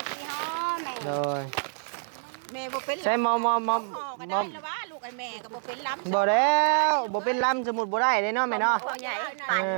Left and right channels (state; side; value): silent; left; 60 dB below the other